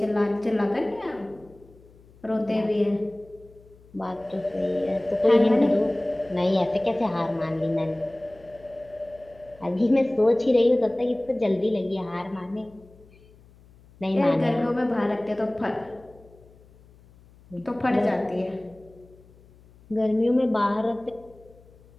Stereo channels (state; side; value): noise; left; hum, 26 dB below the sound